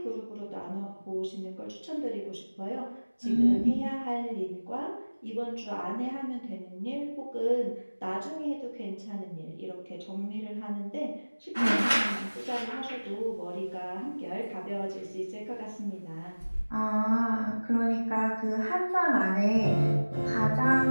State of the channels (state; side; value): inverted; both; correlation -1.00